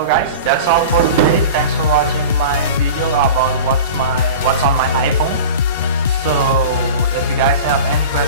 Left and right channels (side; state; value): both; inverted; correlation -0.34